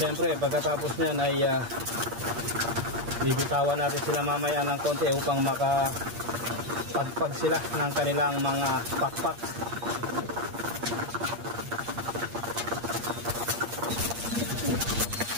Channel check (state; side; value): late; left; 8.6 ms